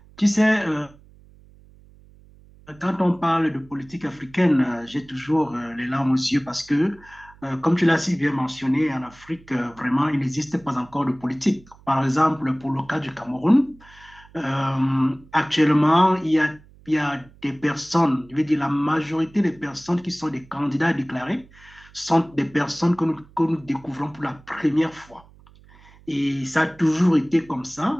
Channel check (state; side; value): noise; right; hum, 25 dB below the sound